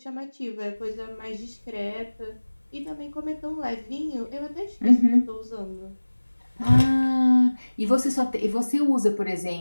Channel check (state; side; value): inverted; both; correlation -1.00